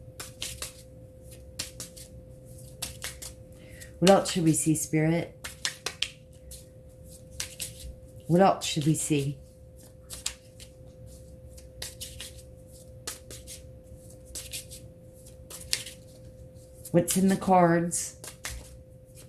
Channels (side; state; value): both; identical; correlation 1.00